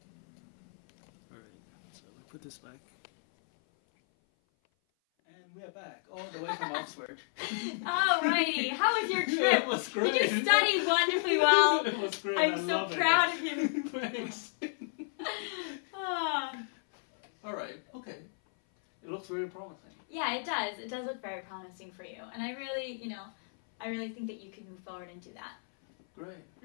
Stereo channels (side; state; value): right; silent; 56 dB below the other